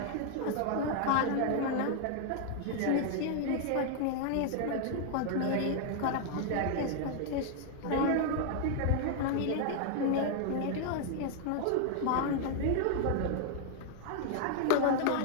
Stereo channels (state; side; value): different; both; correlation 0.00